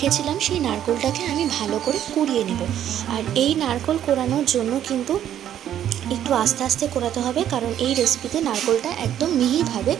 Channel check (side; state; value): left; quieter; 10.7 dB